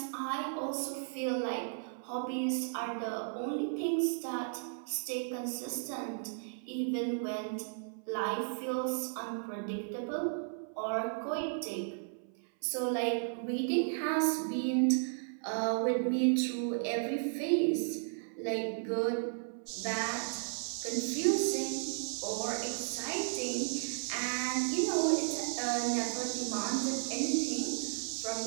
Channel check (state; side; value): silent; left; 55 dB below the other